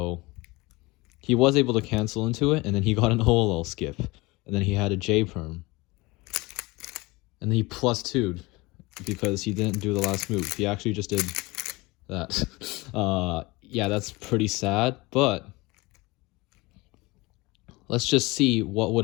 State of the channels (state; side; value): quieter; right; 23.0 dB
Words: he was able to cancel into it, and then he got an OLL skip, and then he had a J perm, and then he plus 2'd because he didn't do the last move. He actually just did that. Yeah, that's pretty sad, but let's just see what would